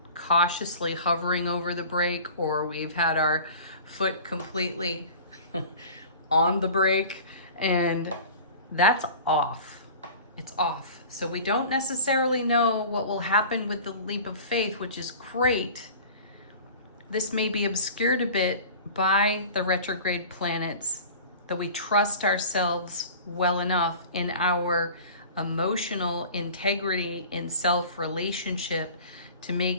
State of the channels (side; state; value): both; inverted; correlation -0.41